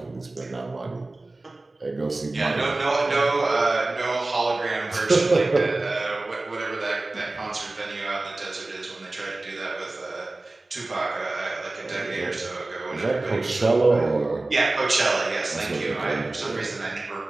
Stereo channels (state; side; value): quieter; left; 3.0 dB